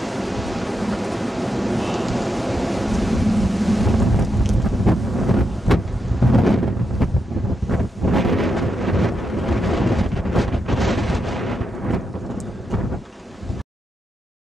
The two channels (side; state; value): both; normal; correlation 0.85